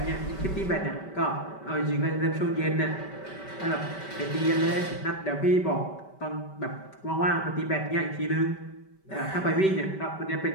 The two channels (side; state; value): right; late; 5.2 ms